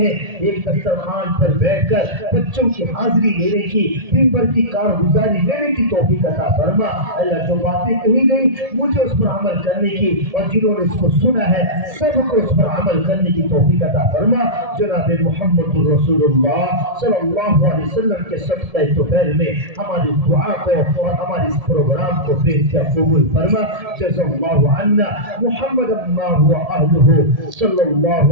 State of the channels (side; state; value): left; late; 1.7 ms